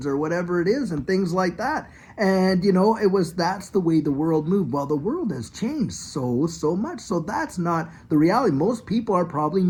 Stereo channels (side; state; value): both; identical; correlation 1.00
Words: or whatever it is and things like that. And, that's the way the world moved. Well, the world has changed so much. So that's not the reality. Most people are probably